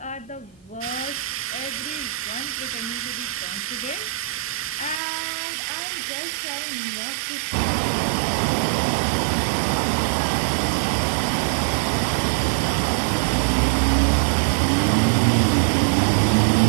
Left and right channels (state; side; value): drops out; left; at 5.0 s